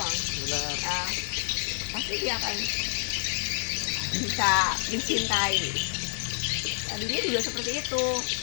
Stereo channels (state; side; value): silent; right; digital silence